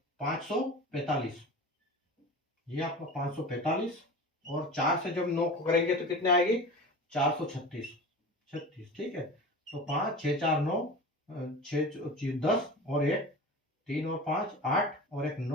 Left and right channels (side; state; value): both; normal; correlation 0.33